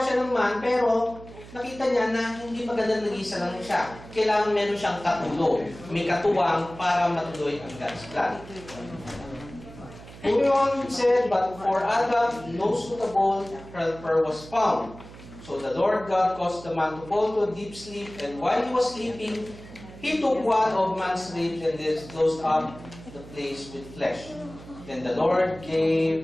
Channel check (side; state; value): right; noise; hum, 17 dB below the sound